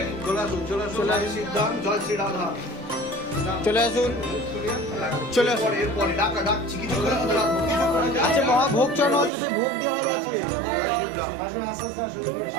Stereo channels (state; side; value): drops out; left; at 9.3 s